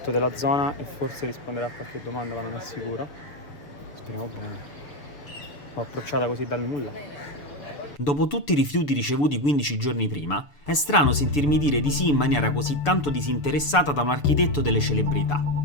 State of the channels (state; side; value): late; right; 6.9 ms